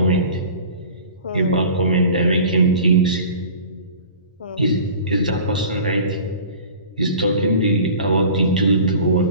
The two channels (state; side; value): inverted; both; correlation -0.42